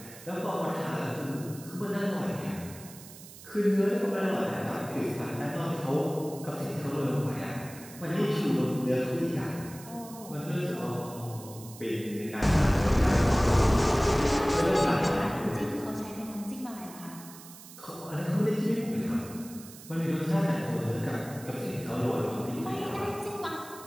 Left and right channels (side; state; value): right; noise; hiss, 17 dB below the sound